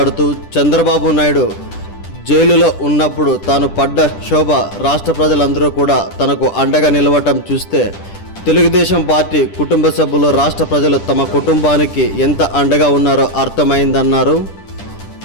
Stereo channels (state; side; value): late; right; 10 ms